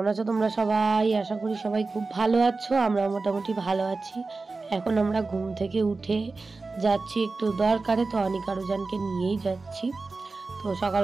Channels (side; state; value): left; quieter; 3.8 dB